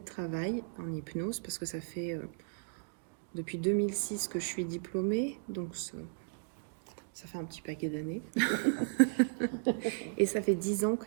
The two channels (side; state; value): left; silent; digital silence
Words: travail en hypnose, parce que ça fait depuis 2006 que je suis diplômée, donc ça fait un petit paquet d'années. Et ça fait 10 ans